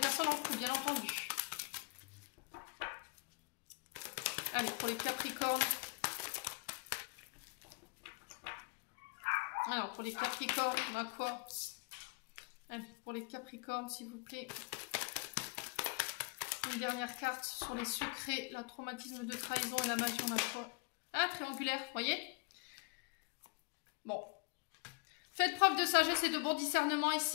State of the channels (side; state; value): right; quieter; 31.0 dB